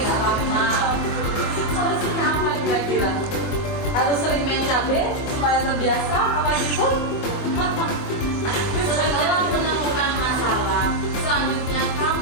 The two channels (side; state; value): right; late; 24 ms